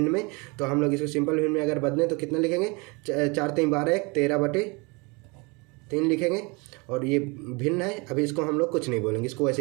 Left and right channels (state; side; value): quieter; left; 28.4 dB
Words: में। तो हम लोग इसको सिंपल भिन्न में अगर बदलें तो कितना लिखेंगे, 4 3 12 1 13/3 लिखेंगे। और ये भिन्न है, अभी इसको हम लोग कुछ नहीं बोलेंगे, इसको